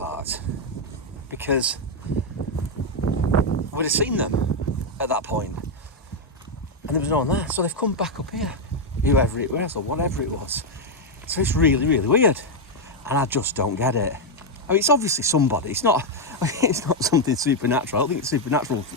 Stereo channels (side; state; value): both; normal; correlation 0.01